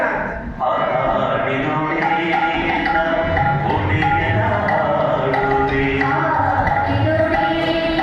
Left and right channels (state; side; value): identical; both; correlation 1.00